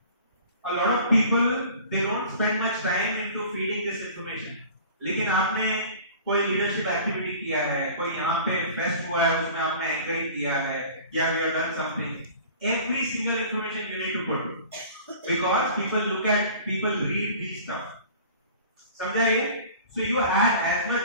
A lot of people they don't spend much time into feeding this information. लेकिन आपने कोई leadership activity किया है, कोई यहाँ पे fest हुआ है, उसमें आपने anchoring किया है, या we have done something. Every single information you need to put because people read these stuff. समझा ये? So you add as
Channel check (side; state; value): both; inverted; correlation -0.44